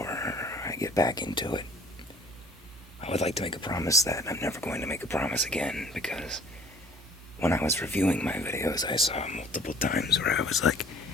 I get back into it, I would like to make a promise that I'm never going to make a promise again, because when I was reviewing my videos, I saw multiple times where I was like,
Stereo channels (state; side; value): normal; both; correlation 0.53